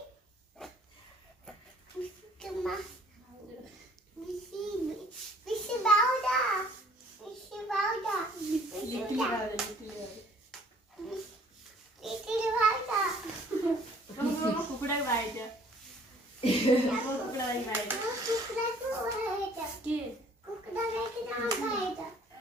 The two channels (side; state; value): both; normal; correlation 0.56